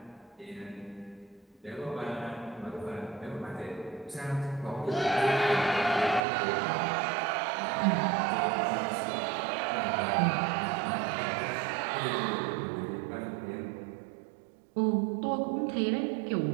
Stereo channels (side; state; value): left; drops out; at 6.2 s